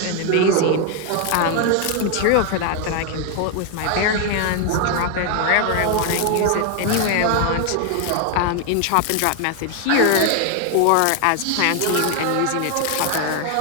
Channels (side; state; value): both; different; correlation 0.01